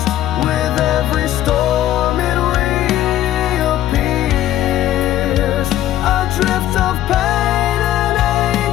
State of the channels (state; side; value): quieter; right; 13.1 dB